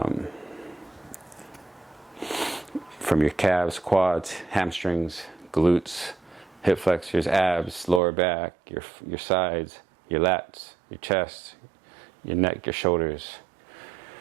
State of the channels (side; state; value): left; drops out; at 8.0 s